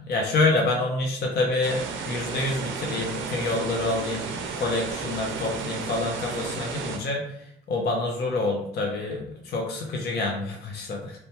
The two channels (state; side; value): normal; both; correlation 0.37